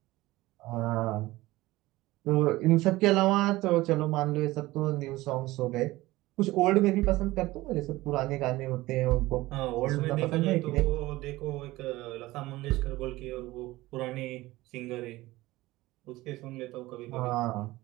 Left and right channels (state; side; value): quieter; left; 18.6 dB